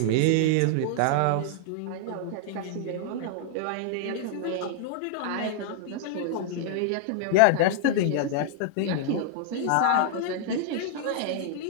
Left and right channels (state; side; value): different; both; correlation -0.01